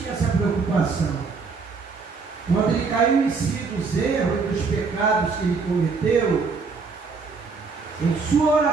essa preocupação. Quando ele caiu em si dos erros e dos pecados que ele cometeu, em sua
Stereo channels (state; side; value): quieter; left; 4.6 dB